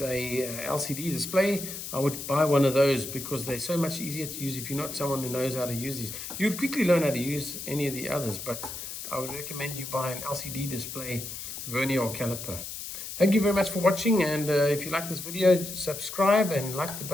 a LCD display. I would buy one of those because they're so much easier to use if you're not someone who knows how to use these. You would quickly learn how to use any of the others, but I would recommend you buy an LCD display, vernier or caliper. Thank you very much for watching, and if you like this video, subscribe and like the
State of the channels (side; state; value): left; noise; hiss, 8 dB below the sound